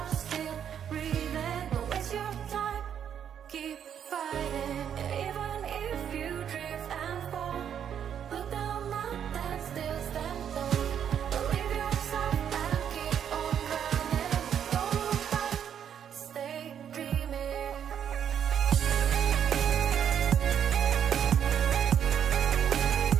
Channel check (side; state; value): left; quieter; 8.8 dB